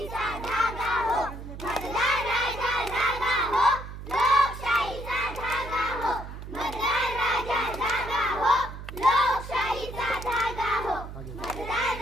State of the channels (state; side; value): noise; right; hum, 11 dB below the sound